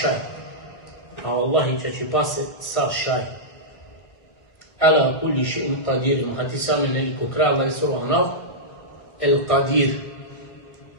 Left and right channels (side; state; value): right; late; 1.8 ms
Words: A Allahi će ti pase sa šaj. Ala kulli še'in qadir. Hati sami neliko kraj Allah je sura Anaf. El qadir.